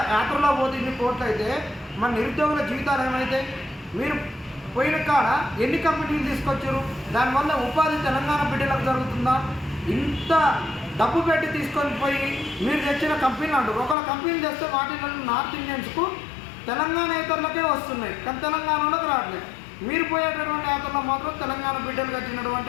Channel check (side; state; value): right; drops out; at 14.0 s